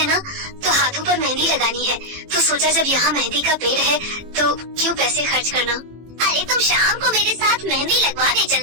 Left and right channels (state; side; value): late; left; 18 ms